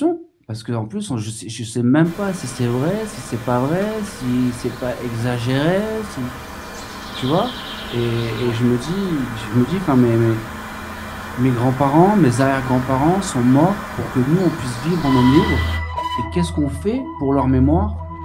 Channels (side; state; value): both; identical; correlation 1.00